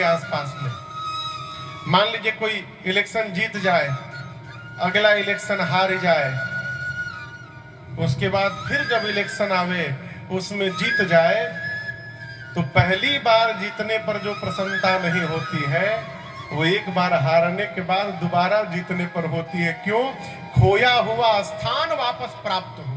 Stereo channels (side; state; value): both; identical; correlation 1.00